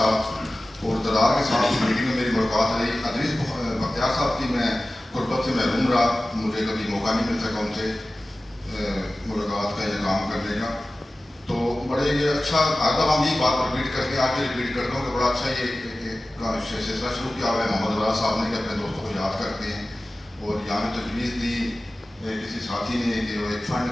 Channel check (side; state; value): both; normal; correlation 0.96